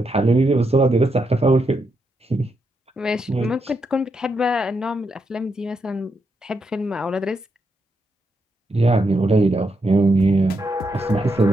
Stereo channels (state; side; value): normal; both; correlation 0.82